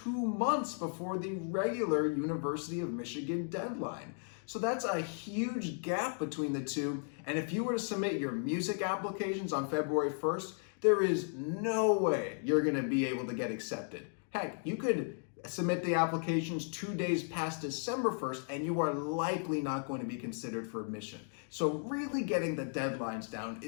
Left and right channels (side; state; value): right; silent; 54 dB below the other